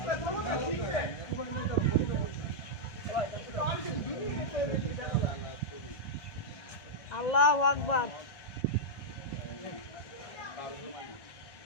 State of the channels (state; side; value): late; right; 1.6 ms